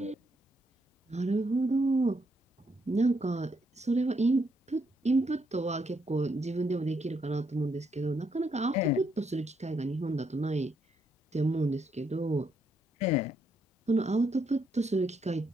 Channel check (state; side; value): normal; both; correlation 0.76